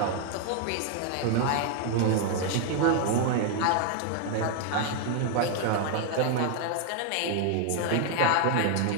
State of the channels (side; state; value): both; different; correlation 0.01